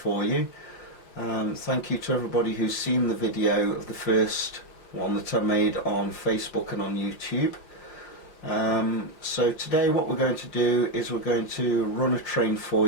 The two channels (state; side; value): late; right; 5.5 ms